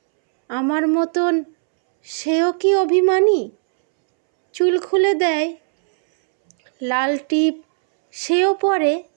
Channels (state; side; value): silent; left; 67 dB below the other